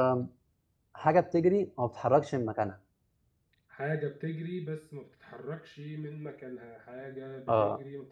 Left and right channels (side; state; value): both; identical; correlation 1.00